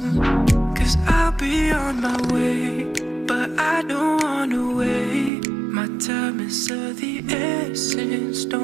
cause I'll be on my way. But I don't wanna wait. My time is of the essence,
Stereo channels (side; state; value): left; drops out; at 5.3 s